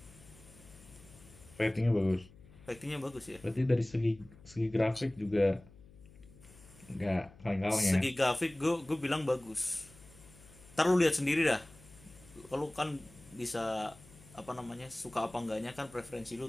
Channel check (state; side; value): noise; left; hum, 22 dB below the sound